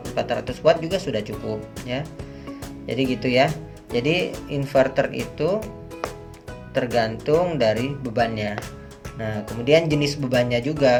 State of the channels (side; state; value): both; identical; correlation 1.00